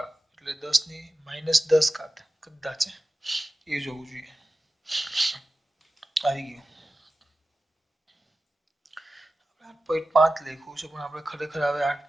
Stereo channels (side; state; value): both; normal; correlation 0.95